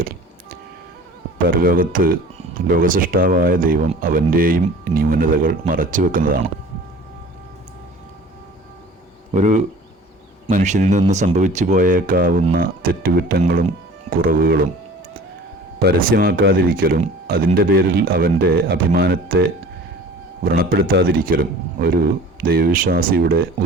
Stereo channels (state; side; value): normal; both; correlation 0.44